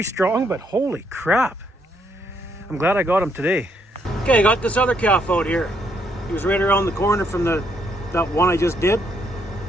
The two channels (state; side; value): normal; both; correlation 0.73